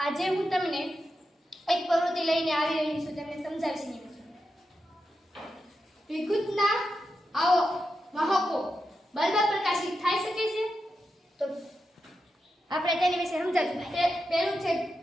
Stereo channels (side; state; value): both; normal; correlation 0.88